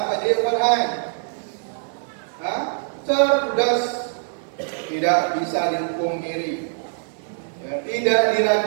Pak Dirwan. Cerdas, tidak bisa dipungkiri, ya, tidak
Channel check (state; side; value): silent; left; 60 dB below the other